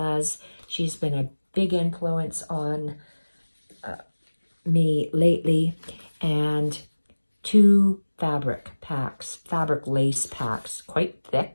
She's been a big influence on me lately. And 2 fabric packs, fabric lace packs, quite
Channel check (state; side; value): inverted; both; correlation -1.00